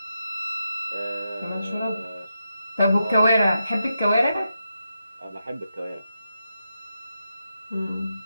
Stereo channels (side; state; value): both; inverted; correlation -0.86